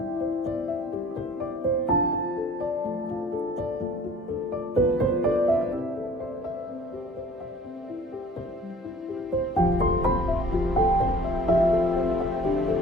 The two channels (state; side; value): normal; both; correlation 0.49